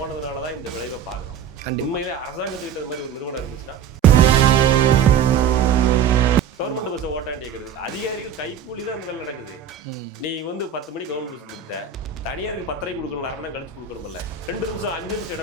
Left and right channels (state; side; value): quieter; left; 7.7 dB